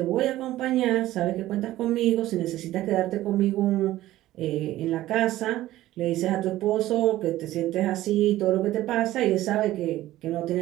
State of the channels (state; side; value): quieter; left; 15.2 dB